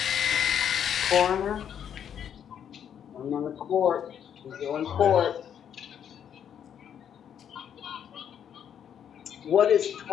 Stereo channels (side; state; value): right; quieter; 8.9 dB